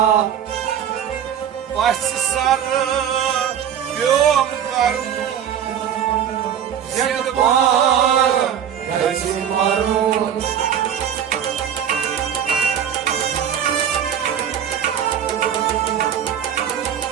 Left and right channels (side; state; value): left; quieter; 9.1 dB